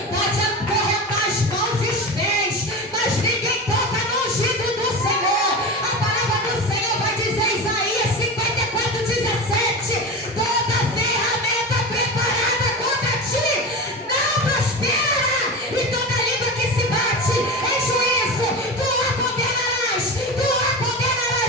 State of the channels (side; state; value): both; normal; correlation 0.26